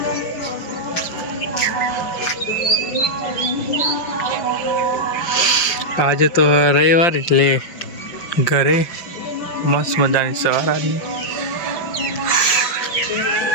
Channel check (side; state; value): right; late; 5.6 ms